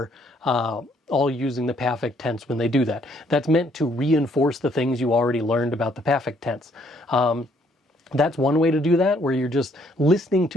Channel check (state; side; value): normal; both; correlation 0.67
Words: all using the perfect tense when they do that. That's meant to reinforce the things you already learned about the perfect tense. That's one way to do that, where you're just listening